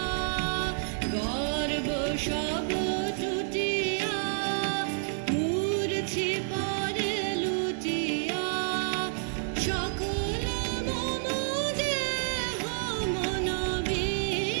গর্ব সব টুটিয়া মূর্ছি পরে লুটিয়া সকল মম দেহ মন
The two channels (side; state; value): left; silent; digital silence